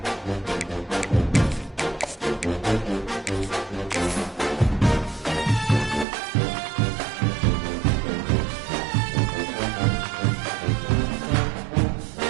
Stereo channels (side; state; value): left; drops out; at 6.1 s